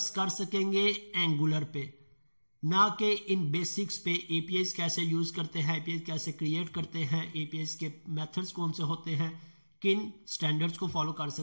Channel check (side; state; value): both; inverted; correlation -1.00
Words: कर सकेंगे एंगुलर पे, ना कि इन बेसिक्स पे। APIs कैसे यूज करते हैं, APIs कैसे क्रिएट करते हैं, APIs के मेथड्स कौन से होते हैं, किन स्टैंडर्ड्स को फॉलो कर